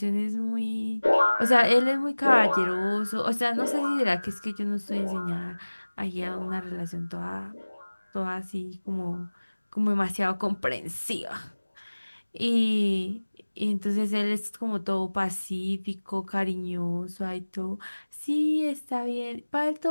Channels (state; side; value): inverted; both; correlation -1.00